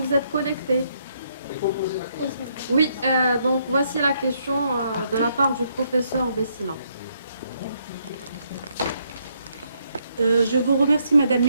êtes connectée? Oui, donc voici la question de la part du professeur Bessila. Je vous remercie, Madame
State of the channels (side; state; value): both; inverted; correlation -0.73